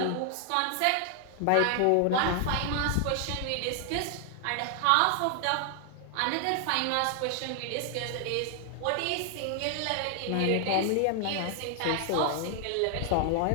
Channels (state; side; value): different; both; correlation 0.00